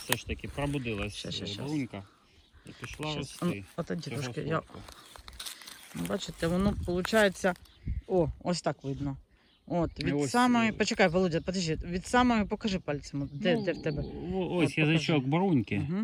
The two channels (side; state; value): both; identical; correlation 1.00